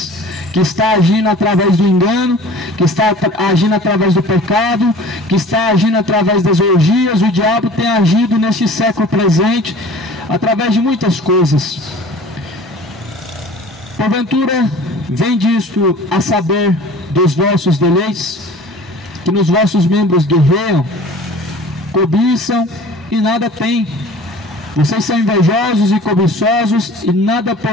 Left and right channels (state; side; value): normal; both; correlation 0.44